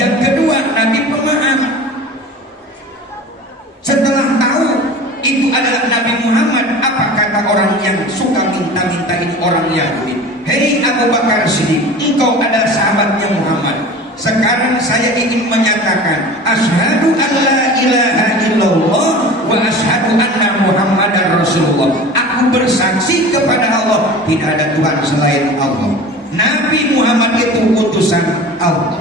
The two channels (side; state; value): both; normal; correlation 0.38